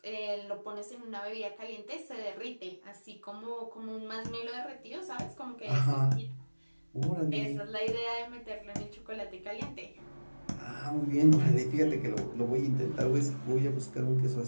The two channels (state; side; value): inverted; both; correlation -1.00